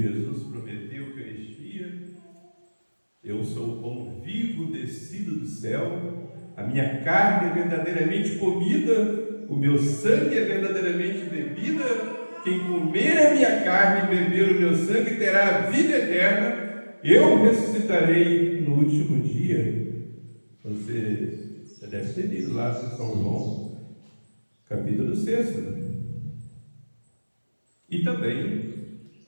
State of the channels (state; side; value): inverted; both; correlation -1.00